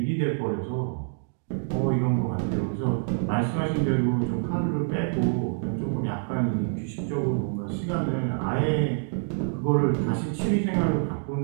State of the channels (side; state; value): left; silent; 60 dB below the other